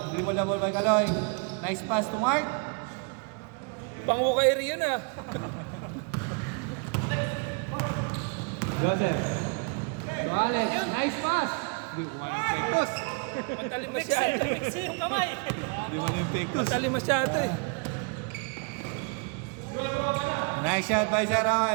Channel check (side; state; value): left; quieter; 34.4 dB